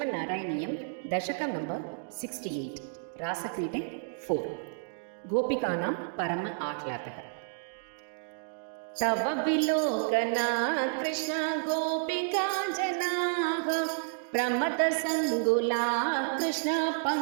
ದಶಕಂ ನಂಬರ್ 68 ರಾಸಕ್ರೀಡೆ 4 ಗೋಪಿಕಾನಾಂ ಪರಮ ಆಹ್ಲಾದಃ. ತವ ವಿಲೋಕನಾ ಕೃಷ್ಣ ಗೋಪಿಕಾ ಜನಾಃ ಪ್ರಮದ ಸಂಗುಲಾ ಕೃಷ್ಣ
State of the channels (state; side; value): silent; left; digital silence